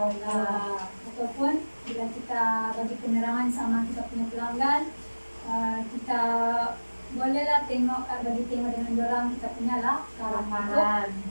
bila kita bagi penerangan sama kita punya pelanggan, kita bolehlah bagi tengok dengan dorang kita punya lah Karangan.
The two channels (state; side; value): inverted; both; correlation -1.00